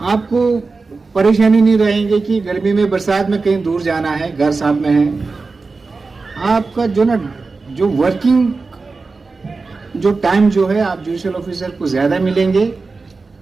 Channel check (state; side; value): quieter; left; 4.0 dB